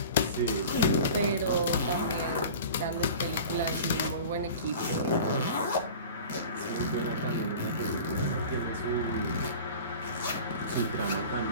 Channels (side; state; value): both; inverted; correlation -0.39